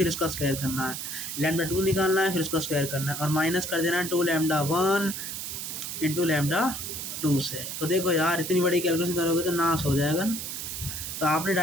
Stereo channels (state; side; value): noise; right; hiss, 6 dB below the sound